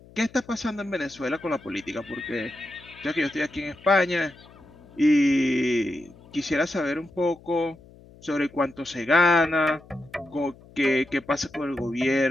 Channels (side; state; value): left; noise; hum, 23 dB below the sound